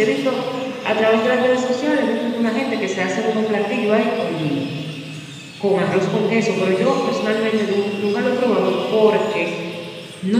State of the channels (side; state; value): both; identical; correlation 1.00